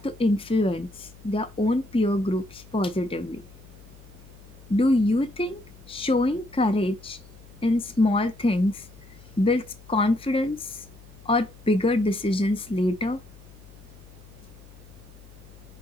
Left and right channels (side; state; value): left; noise; hum, 22 dB below the sound